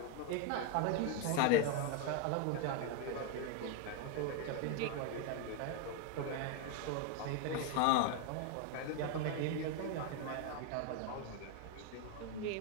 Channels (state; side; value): different; both; correlation 0.01